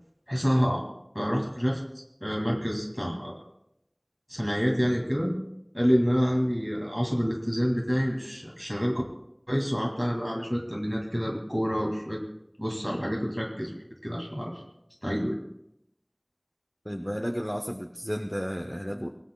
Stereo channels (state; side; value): identical; both; correlation 1.00